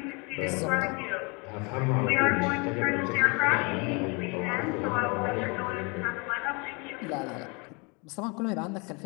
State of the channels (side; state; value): right; quieter; 30.6 dB